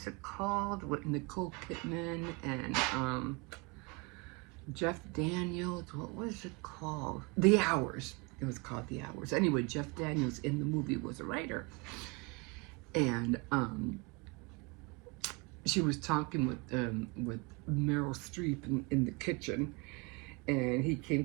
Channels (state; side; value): quieter; left; 28.6 dB